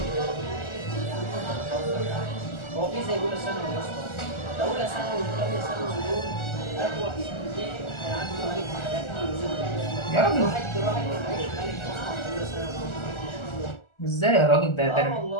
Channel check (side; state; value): right; late; 1.4 ms